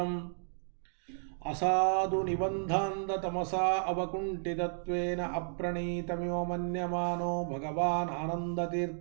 ಅಸಾಧು ನಿಬಂಧಾಂಧತಮಸಾ ಅವಕುಂಠಿತತ್ವೇನ ಅಪ್ರಣೀತಮಿವ ಮನ್ಯಮಾನೋ ಭಗವಾನ್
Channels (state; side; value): silent; left; digital silence